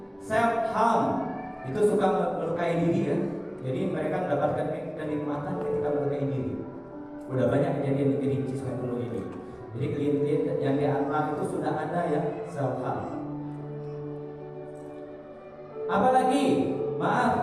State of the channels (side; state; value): both; identical; correlation 1.00